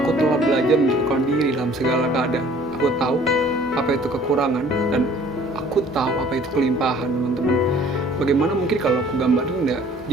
telah belajar mencukupkan diri dalam segala keadaan. Aku tahu apa itu kekurangan dan aku tahu apa itu kelimpahan teman-teman. Bagaimana mungkin kalau aku gambarin ya,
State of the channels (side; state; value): both; normal; correlation 0.54